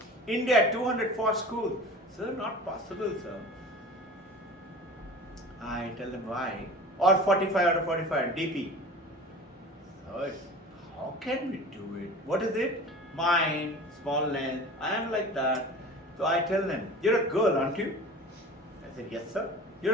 India, 204 schools. Sir, not possible, sir. I tell them why. Or 45 out of 45, DP. So, how can we do it? What is it? Mind, small length. I am like that. So I tell them, you're a girl, aren't you? I said, yes, sir.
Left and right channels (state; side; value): normal; both; correlation 0.38